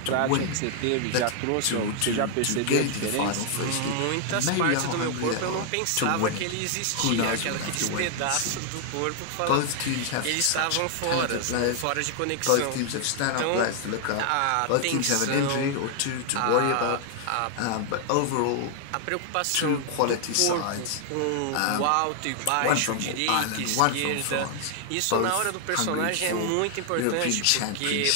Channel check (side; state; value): both; different; correlation 0.00